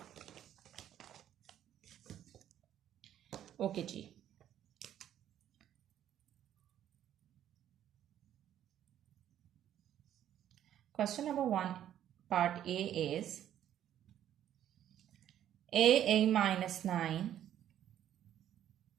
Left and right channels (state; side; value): quieter; left; 11.0 dB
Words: Okay G. Question number 1, part A is a minus 9